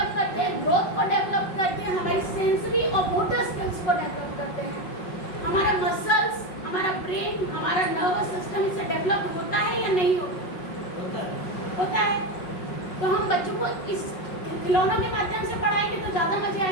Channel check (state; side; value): late; right; 5.4 ms